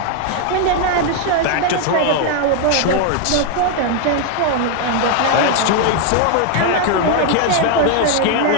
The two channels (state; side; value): different; both; correlation 0.00